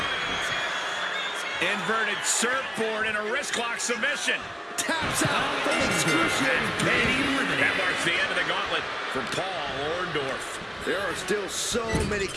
Inverted surfboard and a wrist lock submission. Taps out from excruciating pain. That marks the end of the gauntlet for Paul Orndorff. There are still so many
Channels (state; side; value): identical; both; correlation 1.00